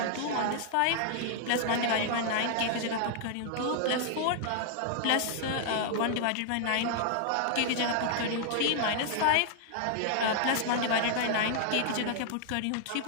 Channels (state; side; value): different; both; correlation -0.01